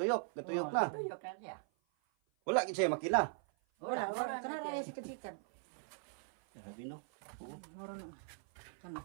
gatuyok na. Tuyok na niya. Wala gid siya makina. Wala kana na sikat-sikat. Sabi no. Oo. Maron kana.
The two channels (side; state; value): left; silent; 51 dB below the other